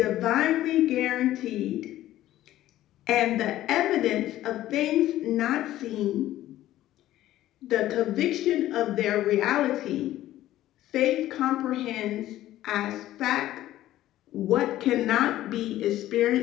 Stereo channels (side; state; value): right; quieter; 14.1 dB